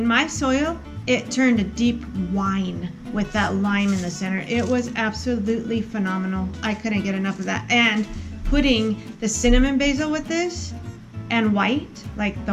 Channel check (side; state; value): both; identical; correlation 1.00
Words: my soil, it turned a deep wine with that lime in the center. It was absolutely phenomenal. I couldn't get enough of that. And putting the cinnamon basil with this and white, like